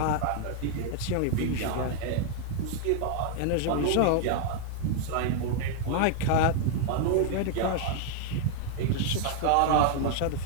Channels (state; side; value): different; both; correlation 0.00